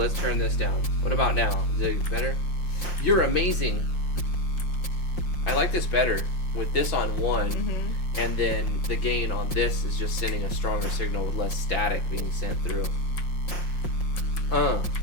turn this down. What about now? Is it better? You're amazing. I like this better with this on 1, Mm-hmm. and then the gain on this is just sending a stronger signal with less static being sent through.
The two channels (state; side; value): late; right; 5.6 ms